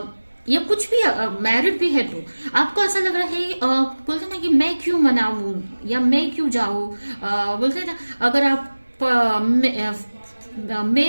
या कुछ भी मैरिड भी है, तो आपको ऐसा लग रहा है, बोलते ना कि मैं क्यों मनाऊं या मैं क्यों जाऊं, बोलते ना अगर आप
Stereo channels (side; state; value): both; inverted; correlation -1.00